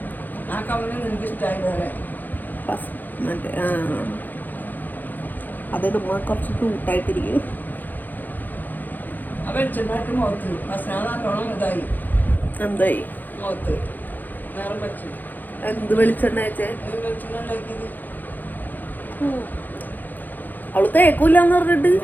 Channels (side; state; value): right; late; 0.086 ms